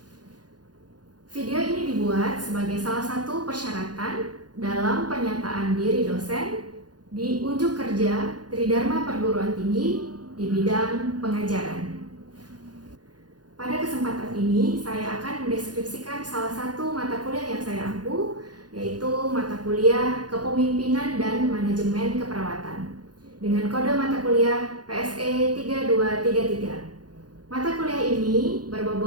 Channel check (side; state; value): left; late; 0.69 ms